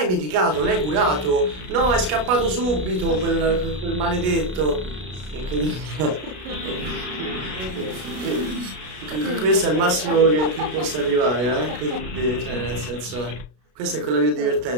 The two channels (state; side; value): late; left; 33 ms